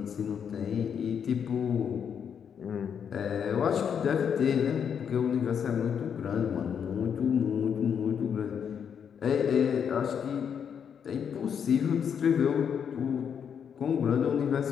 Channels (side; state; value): right; quieter; 7.6 dB